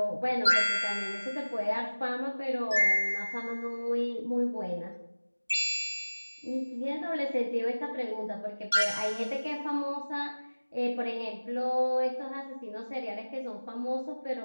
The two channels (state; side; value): inverted; both; correlation -1.00